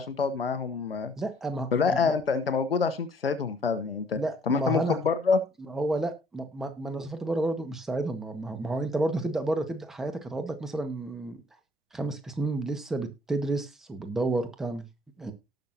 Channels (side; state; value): both; normal; correlation 0.61